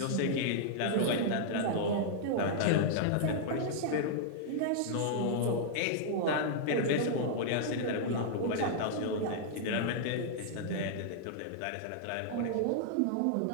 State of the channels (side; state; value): both; different; correlation -0.01